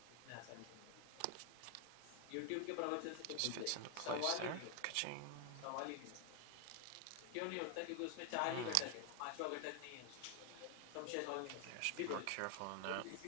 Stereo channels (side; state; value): both; different; correlation 0.01